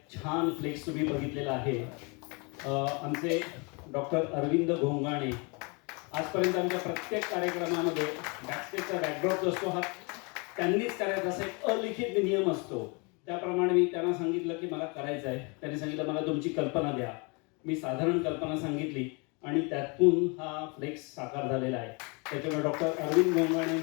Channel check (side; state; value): right; quieter; 31.5 dB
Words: छान फ्लेक्स तुम्ही बघितलेला आहे. आमचे डॉक्टर अरविंद घोंगाणे आजपर्यंत आमच्या प्रत्येक कार्यक्रमामध्ये बॅकस्टेजचा बॅकड्रॉप असतो हा त्यांनीच करायचा, असा एक अलिखित नियम असतो. त्याप्रमाणे मी त्यांना सांगितलं की मला करायचं आहे. त्यांनी सांगितलं मला तुमची कल्पना द्या. मी साधारण कल्पना सांगितली आणि त्यातून हा फ्लेक्स साकार झालेला आहे. त्याच्यामुळे डॉक्टर अरविंद